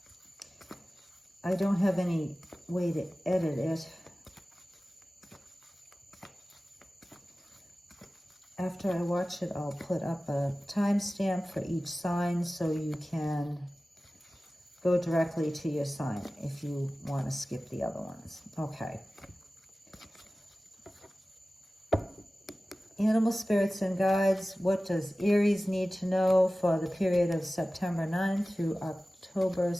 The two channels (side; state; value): both; normal; correlation 0.96